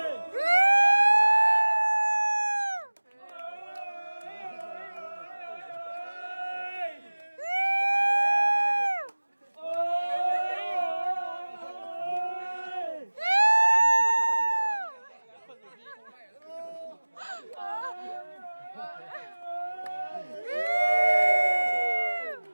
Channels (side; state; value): both; inverted; correlation -1.00